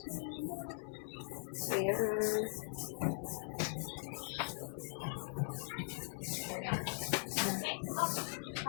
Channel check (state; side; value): silent; right; 51 dB below the other